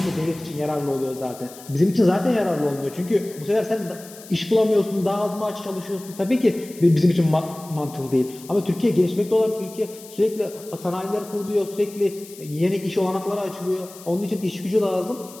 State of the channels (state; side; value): noise; left; hiss, 18 dB below the sound